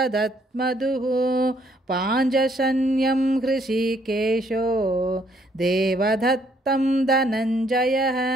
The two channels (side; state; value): both; normal; correlation 0.68